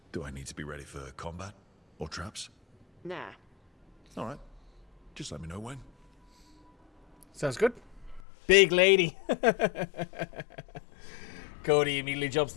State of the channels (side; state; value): right; drops out; at 8.2 s